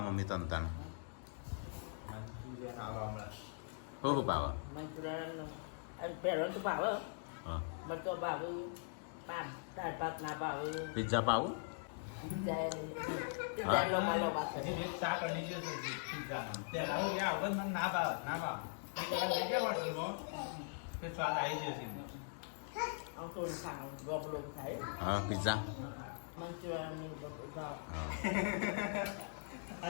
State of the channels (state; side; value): silent; right; digital silence